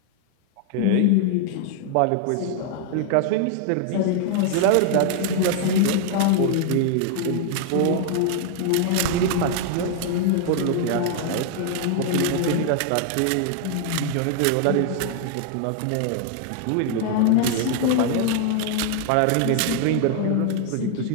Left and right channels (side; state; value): both; different; correlation 0.00